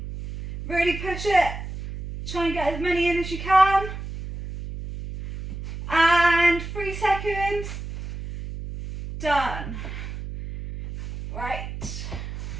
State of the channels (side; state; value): right; noise; hum, 9 dB below the sound